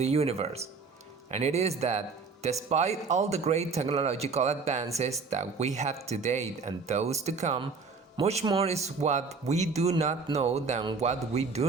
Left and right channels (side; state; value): left; quieter; 4.7 dB